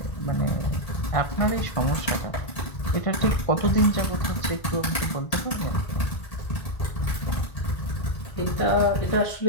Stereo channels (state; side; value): late; right; 1.8 ms